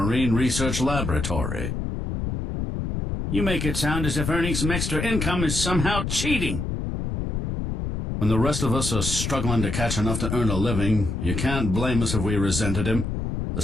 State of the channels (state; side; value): noise; left; rumble, 3 dB below the sound